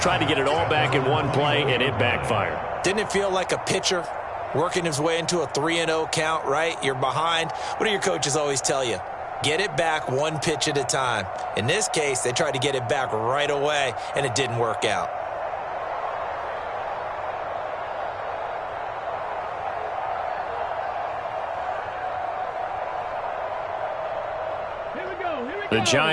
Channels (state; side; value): identical; both; correlation 1.00